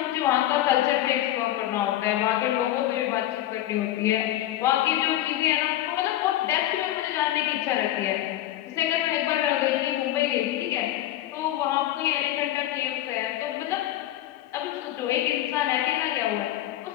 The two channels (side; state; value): right; quieter; 13.7 dB